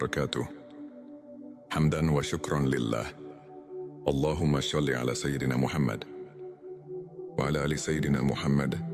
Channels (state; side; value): identical; both; correlation 1.00